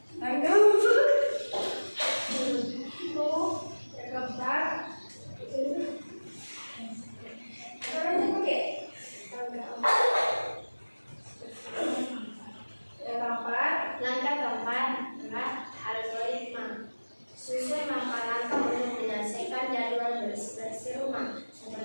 Langkah keempat adalah algoritma. Susun langkah-langkah untuk menyelesaikan jadwal bersih-bersih rumah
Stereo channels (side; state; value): both; inverted; correlation -1.00